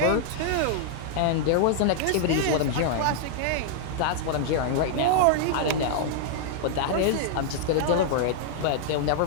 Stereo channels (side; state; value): both; different; correlation -0.01